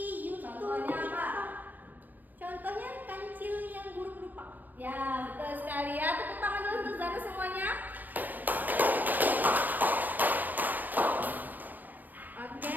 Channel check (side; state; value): left; late; 0.088 ms